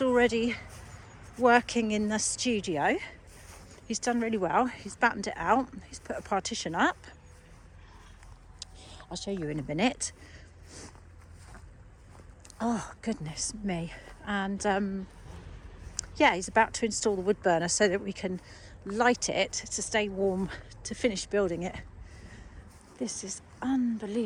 already working in the studio. He's done really well. He's battened it out. He's put a partition up. I'll show you in a minute. Oh, goodness me. And he's about to install the wood burner so that we can light it to stay warm to finish building it. This is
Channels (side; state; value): both; identical; correlation 1.00